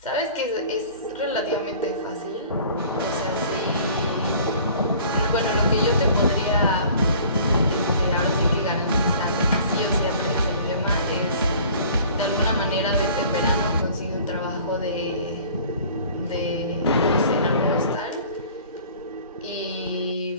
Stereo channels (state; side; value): inverted; both; correlation -0.49